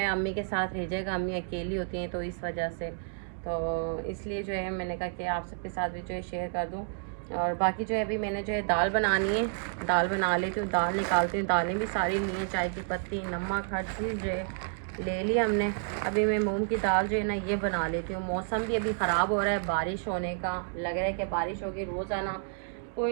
अम्मी के साथ रह जाएगा, अम्मी अकेली होती हैं, तो इस वजह से तो इसलिए जो है मैंने कहा कि आप सबके साथ भी जो है शेयर कर दूँ। और बाकी जो है अभी मैंने जो है दाल बनानी है, दाल बना लेती हूँ, दाल निकालती हूँ। दालें भी सारी ली हैं, चाय की पत्ती, नमक, हर चीज़ जो है ले ली हमने। अभी मैं मूंग की दाल जो है ना ये बना लेती हूँ। मौसम भी अभी ख़राब हो रहा है, बारिश होने का लग रहा है कि बारिश होगी। रोज़ाना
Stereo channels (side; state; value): left; silent; digital silence